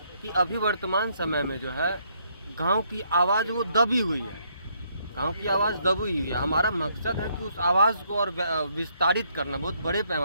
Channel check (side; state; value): both; inverted; correlation -0.71